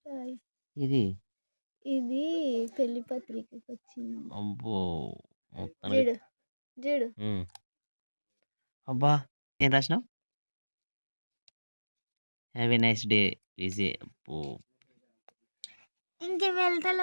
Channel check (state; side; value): inverted; both; correlation -1.00